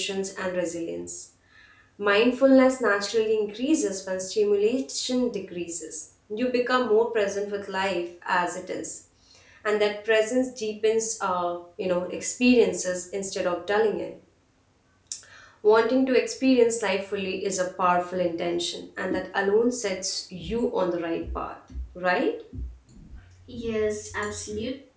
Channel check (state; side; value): identical; both; correlation 1.00